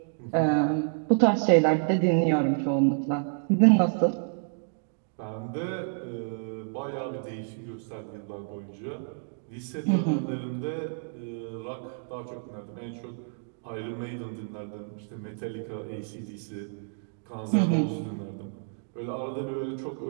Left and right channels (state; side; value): silent; left; digital silence